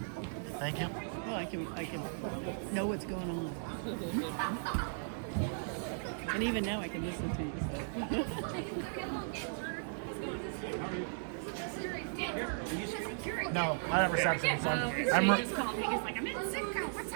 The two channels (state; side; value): silent; left; digital silence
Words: Thank you. Well, I can know what's going on. And even now I can listen to you. No, I have reception. So I'm just called me. He's like, I'm in Sitco. What's